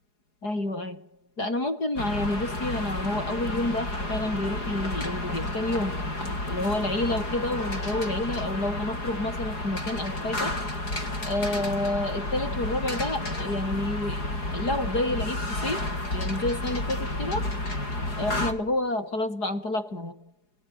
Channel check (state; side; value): late; right; 4.8 ms